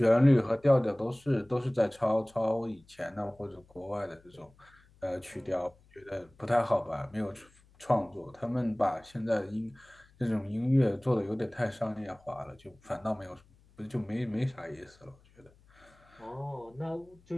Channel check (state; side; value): noise; left; hum, 29 dB below the sound